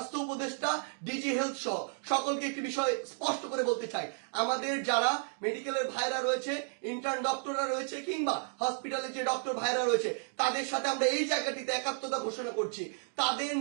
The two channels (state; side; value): silent; left; 56 dB below the other